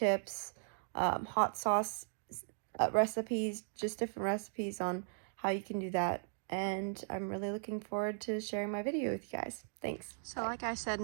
hot sauce recipes, just different recipes on how you can do that. And I'm really looking forward to sharing my video with you guys. Thanks. So like I said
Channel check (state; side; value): silent; left; digital silence